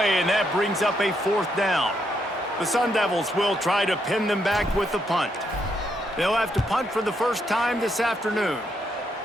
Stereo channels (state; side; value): normal; both; correlation 0.77